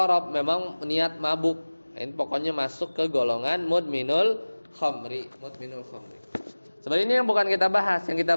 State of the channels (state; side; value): inverted; both; correlation -1.00